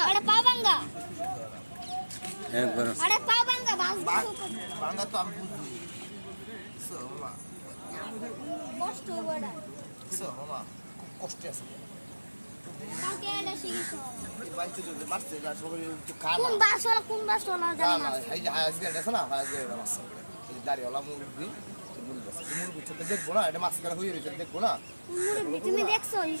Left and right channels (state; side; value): inverted; both; correlation -1.00